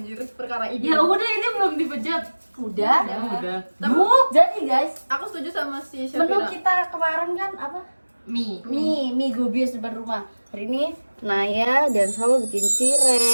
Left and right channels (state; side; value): inverted; both; correlation -1.00